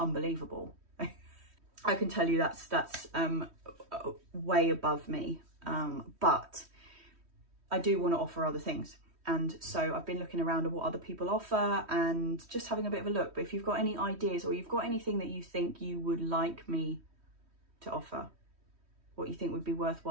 I can tell you that's way above me, but I do want to offer other things. And so I've been looking around at what other people offer and just having a bit of a look. But if you've got any ideas or you've got anything that you think you would like me to offer, what you think would be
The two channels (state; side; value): late; left; 3.1 ms